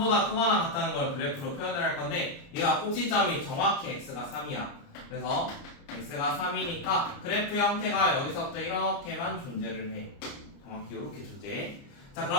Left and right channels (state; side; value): late; right; 29 ms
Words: 크거나 같다는 걸 그래프로 표현을 할 건데 얘가 꼭지점이 정확히 x가 3이야. 그래서 x가 3이니까 그래프 형태가 여기서부터 이렇게만 존재를 해. 정확히 이렇게 존재해. 자